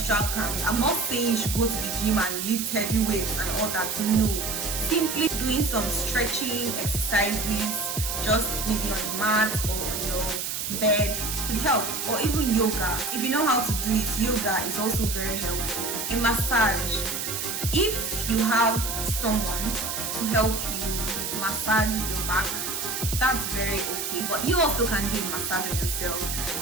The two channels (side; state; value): right; noise; hiss, 3 dB below the sound